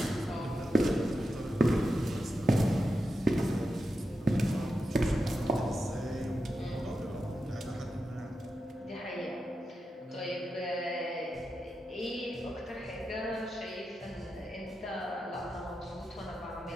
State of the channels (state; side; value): normal; both; correlation 0.89